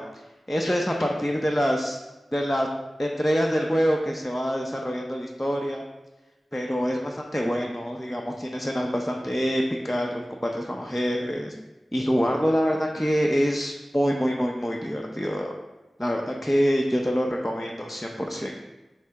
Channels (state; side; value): normal; both; correlation 0.97